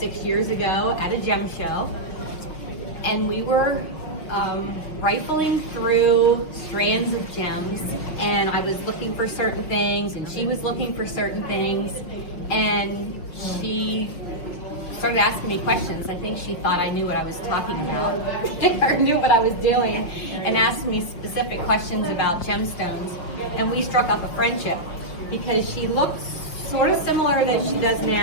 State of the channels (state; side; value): late; right; 6.2 ms